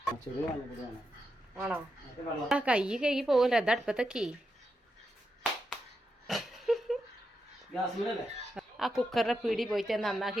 ആണോ? ആ കൈ കേക്ക് പോകില്ല. അത് അടുപ്പത്തേക്ക് ആ കുക്കറിന്റെ പീടി പോയിട്ട് നന്നാക്കി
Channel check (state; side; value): normal; both; correlation 0.86